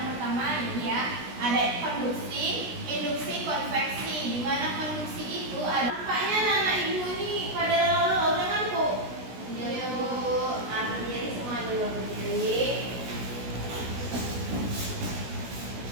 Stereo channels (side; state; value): left; late; 16 ms